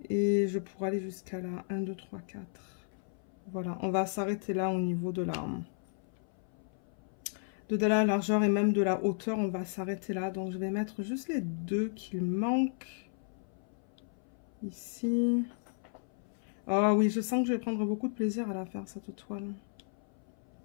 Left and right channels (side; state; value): right; silent; 55 dB below the other